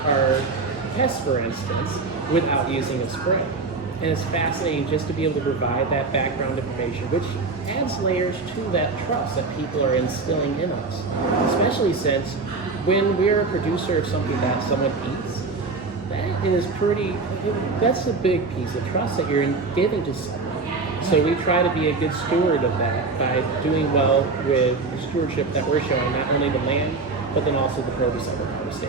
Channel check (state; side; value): quieter; left; 4.0 dB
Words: our pests, for instance, without using a spray. And it's fascinating just to be able to provide that background information, which adds layers to that trust that people are instilling in us. Especially since when we're a producer of something that someone eats, that's a big piece of trust that you're giving to someone. So we try to be a good steward of that by doing well with the stewardship that we're showing, not only the land, but then also the produce that we're